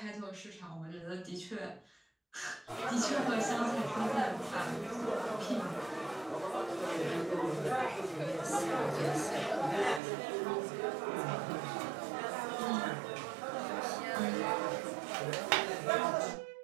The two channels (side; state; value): left; drops out; at 10.0 s